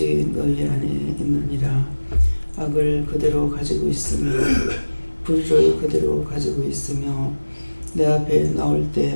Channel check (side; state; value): both; inverted; correlation -1.00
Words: 너희 안에 있느니라. 악을 그대로 가지고 있으며 불의를 그대로 가지고 있으며 내 앞에 나올 때